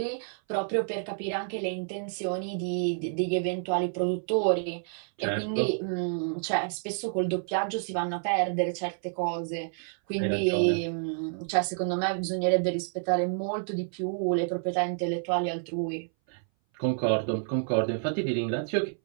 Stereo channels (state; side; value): silent; left; 58 dB below the other